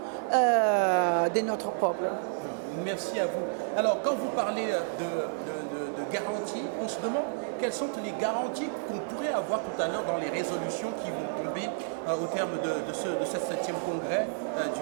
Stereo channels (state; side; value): silent; left; 58 dB below the other